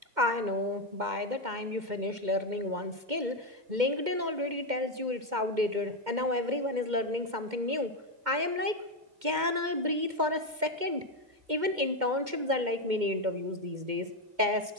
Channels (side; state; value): left; late; 2.1 ms